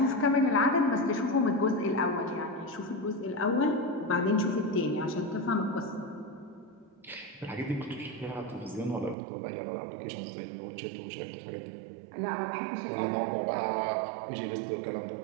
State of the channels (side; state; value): left; drops out; at 9.2 s